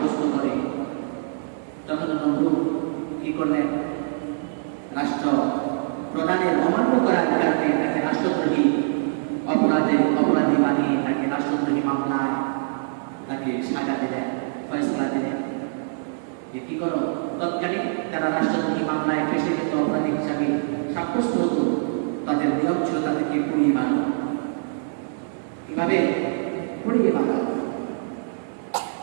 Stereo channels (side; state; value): left; silent; digital silence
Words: করে। যখন নমরুদ কি করলেন, রাষ্ট্র প্রধানের অমান্য করার কারণে তাকে রাষ্ট্রদ্রোহী অপরাধী বানিয়ে তাকে রাষ্ট্রদ্রোহী মামলায় তাকে সাজা দিলেন, ফয়সলা দিলেন যে কি করো। তৎকালীন তারা রাষ্ট্রদ্রোহী মামলায় ফেসে যেত, অপরাধী হিসাবে সাব্যস্ত হতো, তাদের নিয়ম ছিল তাদেরকে পুড়িয়ে মানো। কিভাবে পুড়িয়ে মানো?